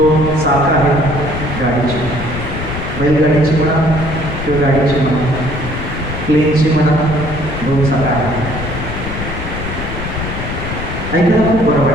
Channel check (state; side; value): noise; left; rumble, 7 dB below the sound